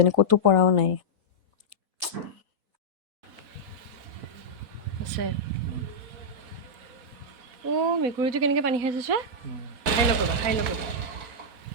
ক'তো পৰাও নাই। আছে মেকুৰীটো কেনেকৈ পানী খাইছে চোৱা, খাই লওক ৰ'বা।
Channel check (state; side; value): late; left; 4.1 ms